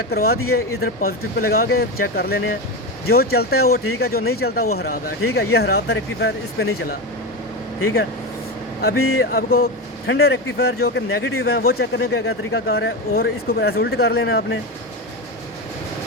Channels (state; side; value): normal; both; correlation 0.18